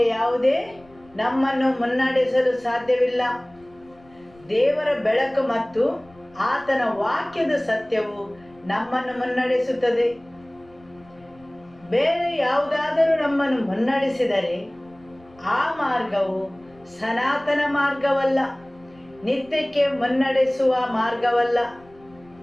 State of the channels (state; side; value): noise; left; rumble, 28 dB below the sound